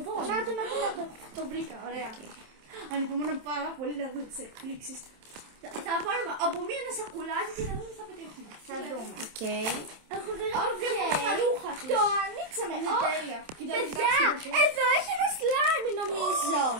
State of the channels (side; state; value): left; late; 27 ms